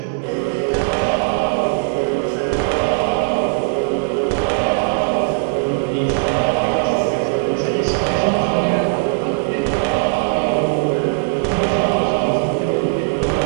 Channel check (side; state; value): left; silent; 60 dB below the other